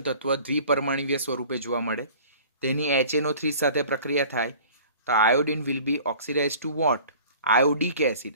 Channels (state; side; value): inverted; both; correlation -0.46